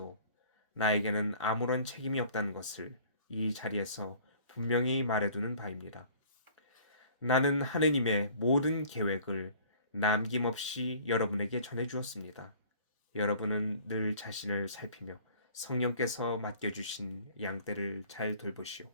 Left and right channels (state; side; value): inverted; both; correlation -0.50